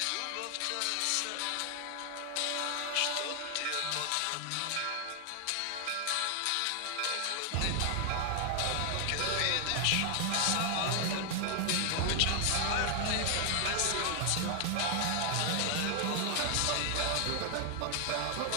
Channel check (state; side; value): different; both; correlation 0.00